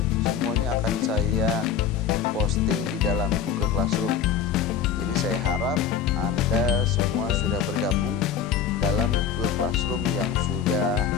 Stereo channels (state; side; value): quieter; right; 7.7 dB